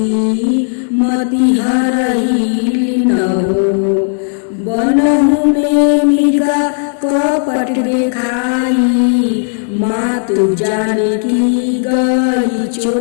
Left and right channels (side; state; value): right; silent; digital silence